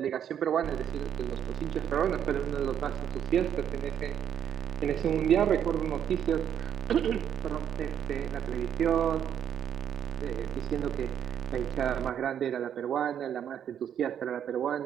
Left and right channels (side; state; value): left; quieter; 9.2 dB